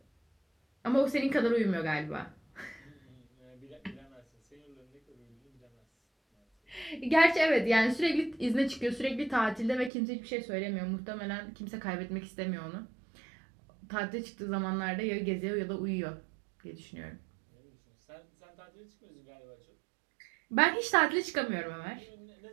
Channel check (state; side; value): drops out; left; at 9.9 s